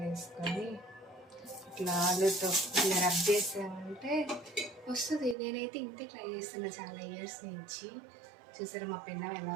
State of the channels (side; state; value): left; drops out; at 5.4 s